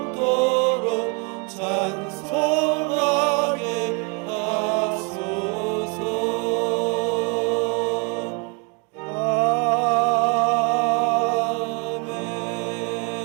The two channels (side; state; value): left; quieter; 31.9 dB